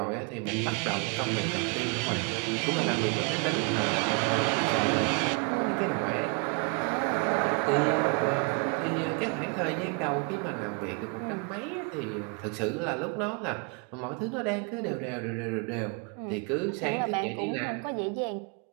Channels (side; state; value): left; quieter; 35.7 dB